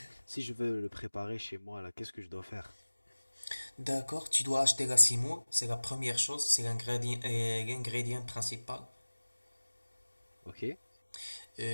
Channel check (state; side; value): inverted; both; correlation -1.00